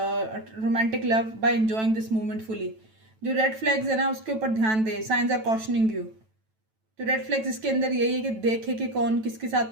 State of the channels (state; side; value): late; left; 9.1 ms